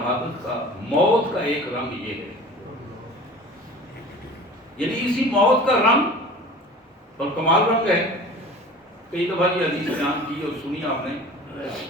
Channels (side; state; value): both; normal; correlation 0.41